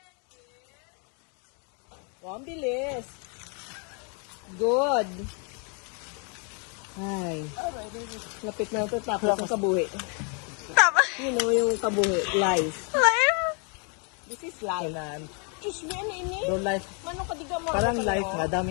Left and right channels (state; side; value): quieter; right; 37.8 dB